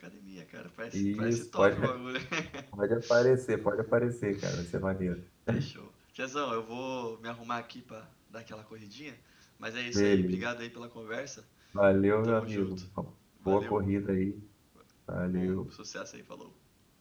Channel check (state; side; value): identical; both; correlation 1.00